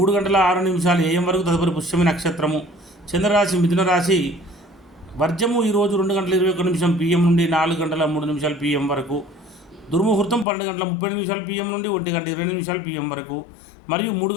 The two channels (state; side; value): drops out; right; at 10.5 s